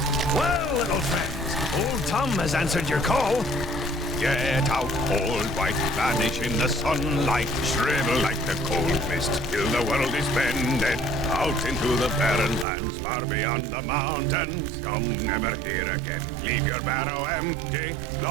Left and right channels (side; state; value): left; drops out; at 12.7 s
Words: Well, little friends, old Tom has answered your call. Get out, old wife, vanish in the sunlight, shrivel like the cold mist till the world is bended. Out into the barren lands, far beyond the mountains, come never here again. Leave your barrow empty,